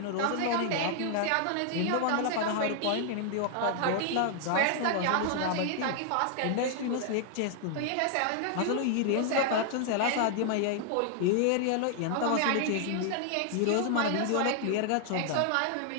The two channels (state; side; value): different; both; correlation 0.00